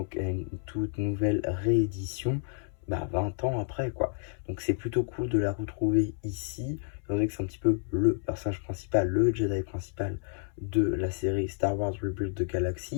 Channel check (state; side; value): silent; right; 58 dB below the other